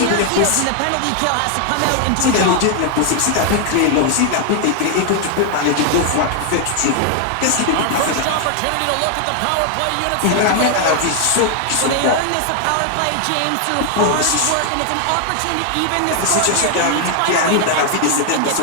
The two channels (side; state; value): both; different; correlation 0.00